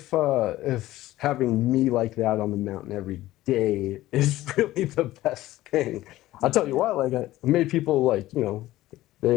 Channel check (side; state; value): right; quieter; 16.0 dB